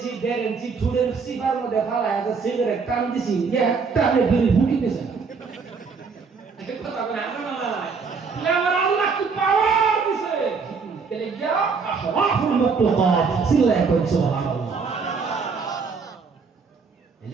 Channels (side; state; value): left; quieter; 5.1 dB